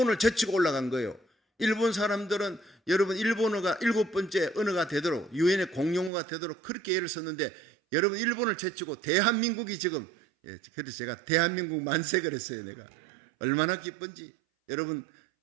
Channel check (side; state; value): left; drops out; at 6.1 s